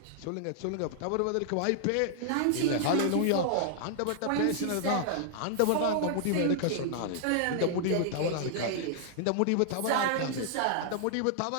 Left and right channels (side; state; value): both; different; correlation -0.01